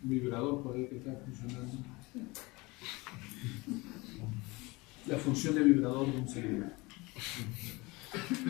vibrador por ahí que está funcionando. La función de vibrador de un celular.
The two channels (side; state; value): right; quieter; 23.8 dB